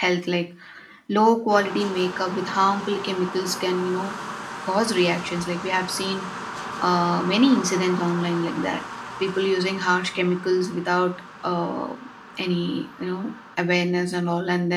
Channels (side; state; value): both; identical; correlation 1.00